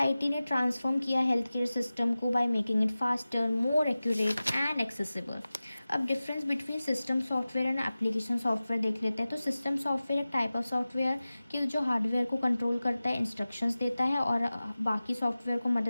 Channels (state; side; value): inverted; both; correlation -0.97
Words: ने ट्रांसफॉर्म किया हेल्थ केयर सिस्टम को by making it faster, more accurate and accessible. अब difference between system software and application software देख लेते हैं। तो सिस्टम सॉफ्टवेयर एक टाइप ऑफ सॉफ्टवेयर कि जो हार्डवेयर को कंट्रोल करता है, इंस्ट्रक्शंस देता है और बाकी सॉफ्टवेयर को